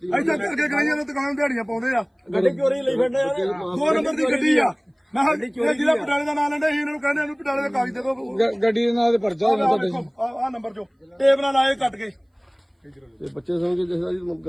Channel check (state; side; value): identical; both; correlation 1.00